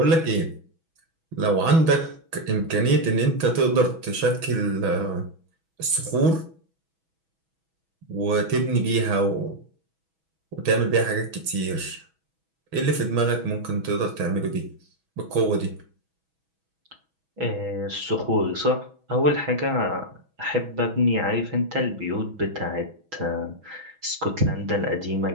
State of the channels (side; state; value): left; late; 6.1 ms